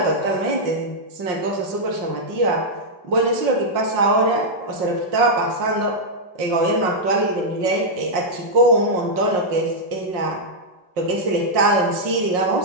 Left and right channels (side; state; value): left; late; 5.6 ms